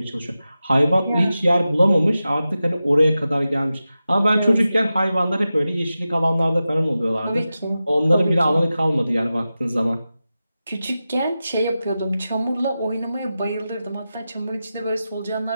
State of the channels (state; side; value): inverted; both; correlation -0.93